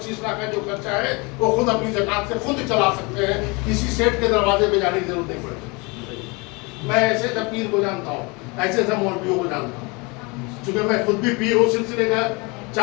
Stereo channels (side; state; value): right; quieter; 27.9 dB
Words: लाख का जो खर्चा है वो खुद अपनी ज़कात से खुद चला सकते हैं, किसी सेठ के दरवाजे पे जाने की जरूरत नहीं पड़ेगी। मैं ऐसे सब पीर को जानता हूँ, ऐसे सब मौलवियों को जानता हूँ, चूंकि मैं खुद भी पीर हूँ। सिलसिले का